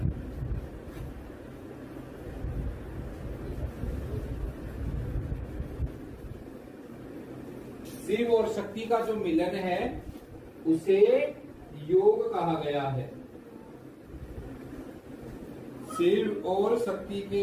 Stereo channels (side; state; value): both; identical; correlation 1.00